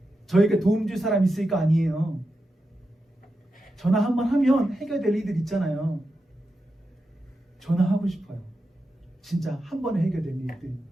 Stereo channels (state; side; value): normal; both; correlation 0.89